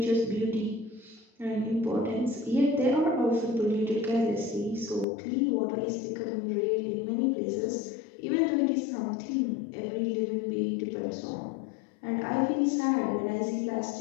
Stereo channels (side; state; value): right; drops out; at 5.1 s